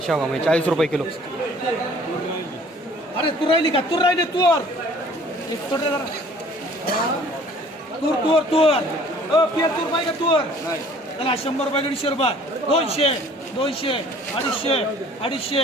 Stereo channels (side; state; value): both; normal; correlation 0.53